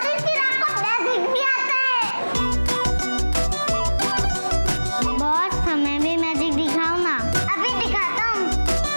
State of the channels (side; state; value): both; inverted; correlation -1.00